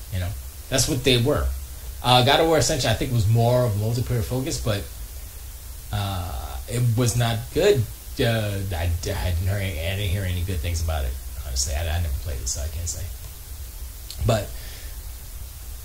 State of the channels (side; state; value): both; identical; correlation 1.00